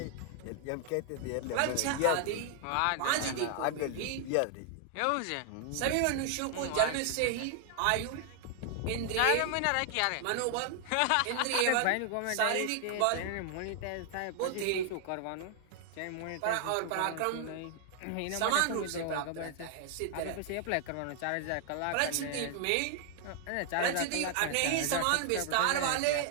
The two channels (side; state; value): both; different; correlation 0.00